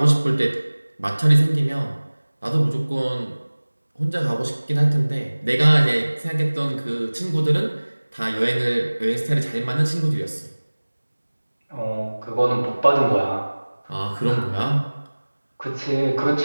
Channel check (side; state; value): both; inverted; correlation -1.00